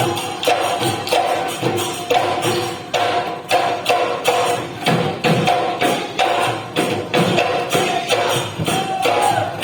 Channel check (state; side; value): identical; both; correlation 1.00